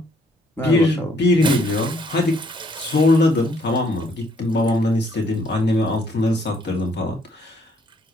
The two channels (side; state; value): both; normal; correlation 0.67